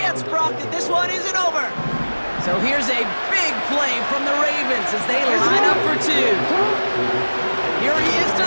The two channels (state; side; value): inverted; both; correlation -1.00